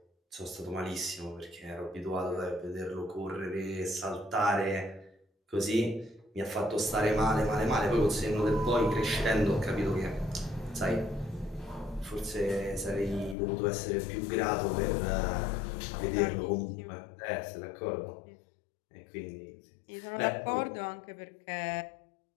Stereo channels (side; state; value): right; drops out; at 13.4 s